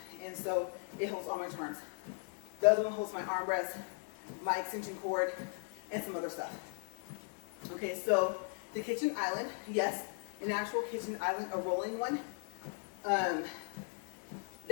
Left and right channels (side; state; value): right; silent; 53 dB below the other